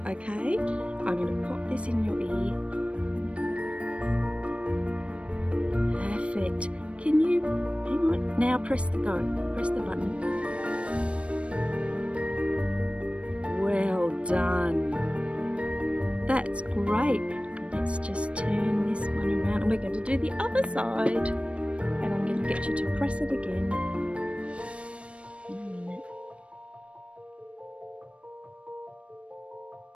okay? I'm going to pop this in your ear. Perfect. Can you, hang on, now press the go. Press the button. Well done. That's great. Let's just turn this one around and we're going to do the other side. And I'm going to get you to press it again. In a minute.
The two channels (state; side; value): late; left; 0.061 ms